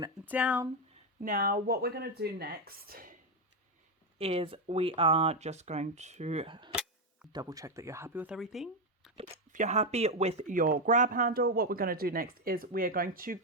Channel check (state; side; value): normal; both; correlation 0.07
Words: down. Now what we're going to do next is we are just going to double check that you're happy with everything. If you're happy with your grab handle, what we're going to do next is we are going to